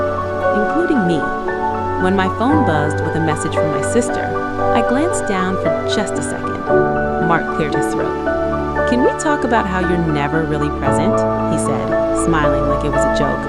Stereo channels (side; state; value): both; identical; correlation 1.00